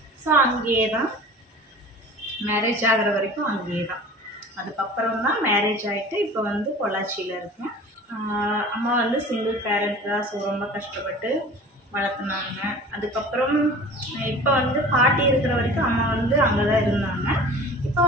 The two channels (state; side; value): normal; both; correlation 0.41